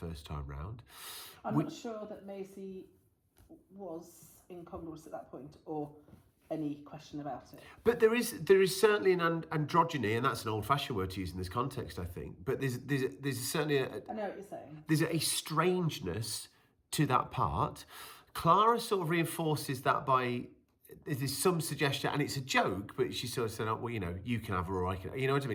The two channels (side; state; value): both; identical; correlation 1.00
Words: time round. I'm not sure that Maisie was incongruous at that point, or any question about it. But there is certainly an androgyny, and that's an old-fashioned word to use in this context, I think. But there's certainly I know what you're saying. There's a strangeness to that part. Clara sort of reinforces that by there's some suggestion, and it's a joke, but she sort of said, "Oh, well, you know, you can have her, or I can," you know what I